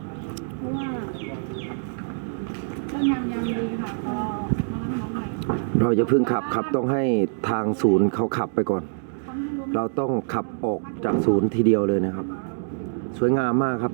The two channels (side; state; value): left; silent; digital silence